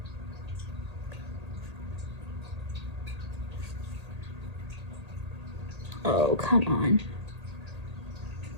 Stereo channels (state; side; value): late; left; 1.8 ms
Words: Oh, come on.